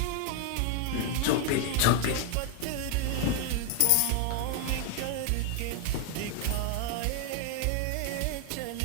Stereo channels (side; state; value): both; different; correlation 0.01